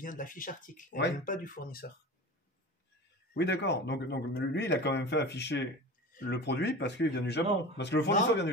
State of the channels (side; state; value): both; normal; correlation 0.33